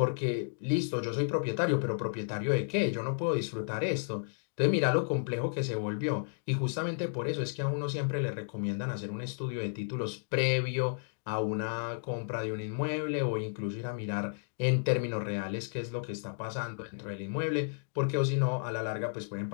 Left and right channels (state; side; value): silent; right; digital silence